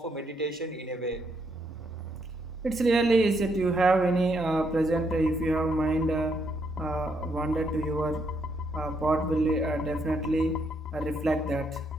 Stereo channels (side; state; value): both; normal; correlation 0.75